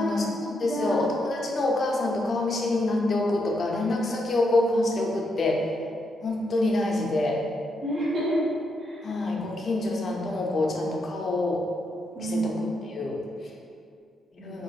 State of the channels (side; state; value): both; normal; correlation 0.80